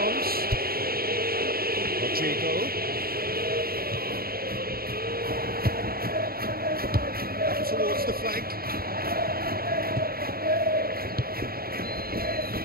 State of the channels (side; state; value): left; late; 0.44 ms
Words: Rodrigo. Up towards the flank.